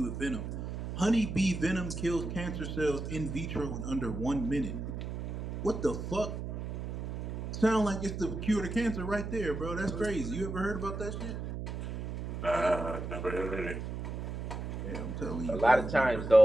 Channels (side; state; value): right; noise; hum, 5 dB below the sound